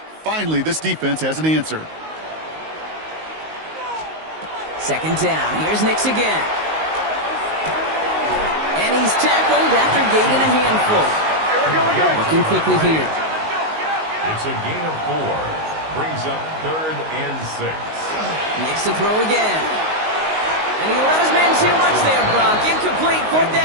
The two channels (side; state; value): left; late; 19 ms